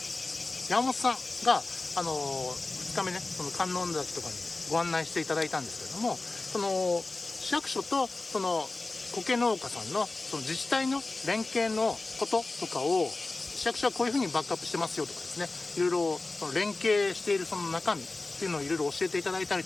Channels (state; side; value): quieter; right; 3.3 dB